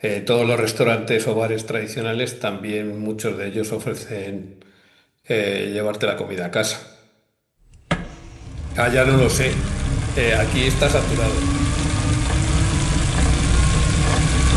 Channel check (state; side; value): identical; both; correlation 1.00